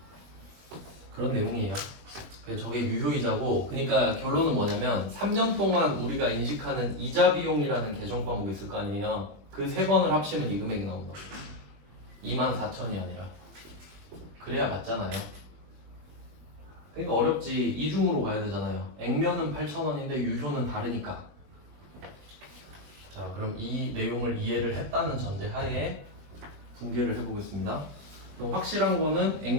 그런 내용이에요. 저게 유효이자고, 그러니까 결론은 뭐냐면 3년 동안 우리가 인식하는 이자 비용이라는 계정 과목이 있을 거 아니에요. 그 세 번을 합치면 이 금액이 나온다고. 2만 4천이 아니라. 그래야 맞잖아요. 그러니까 어렵지. 이중으로 가야 되잖아요. 액면은 8,000원인데 유효는 다르니까. 자, 그럼 이 내용을 이해를 했다는 전제 하에 분개를 해보겠습니다. 그럼 확실한 거는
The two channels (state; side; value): late; left; 21 ms